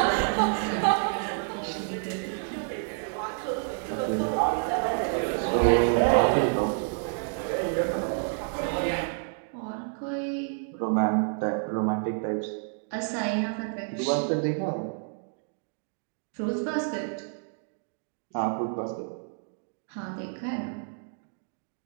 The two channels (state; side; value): silent; left; 59 dB below the other